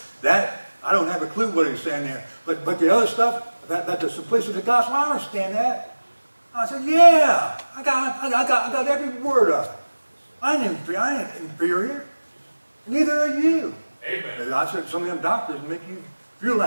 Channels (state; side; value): inverted; both; correlation -1.00